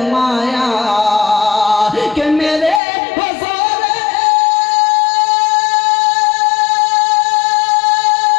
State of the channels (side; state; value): right; drops out; at 2.8 s